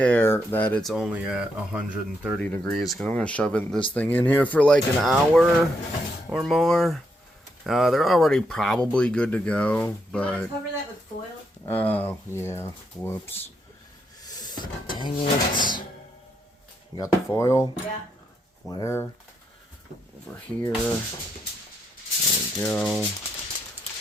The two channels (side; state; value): both; normal; correlation 0.79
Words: that it's only at 130 degrees because I'm going to shove this thing in here for like an hour or more. They're already probably good to go, You want to but... cover that with foil? Oh, yeah. Whoops. Dang it. You got the foil? Yeah. Where? Over here. There we go.